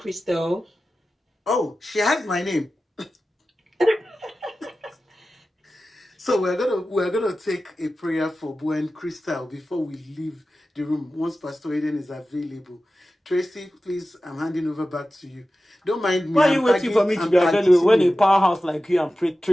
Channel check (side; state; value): both; normal; correlation 0.94